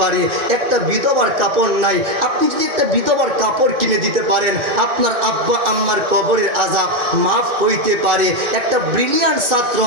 পারে। একটা বিধবার কাপড় নাই, আপনি যদি একটা বিধবার কাপড় কিনে দিতে পারেন, আপনার আব্বা আম্মার কবরের আযাব মাফ হইতে পারে। একটা ব্রিলিয়ান্ট ছাত্র,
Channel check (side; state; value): left; late; 2.5 ms